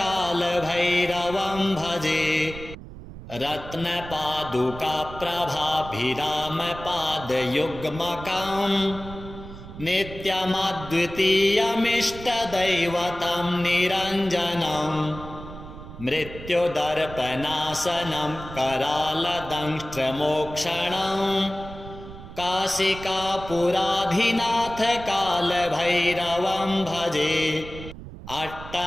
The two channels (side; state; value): right; noise; rumble, 13 dB below the sound